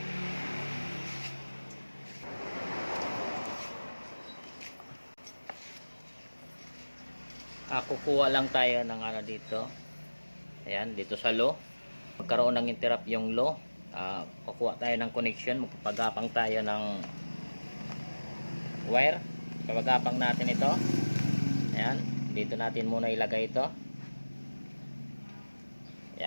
Kukuha lang tayo ng dito. Ayan, dito sa low. Magkaroon ng interrupt yung low. Kukuha tayo ng connection. Magpapagapang tayo ng wire. Pagapang natin ito. Ayan, dito natin muna ilagay ito.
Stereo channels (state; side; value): inverted; both; correlation -1.00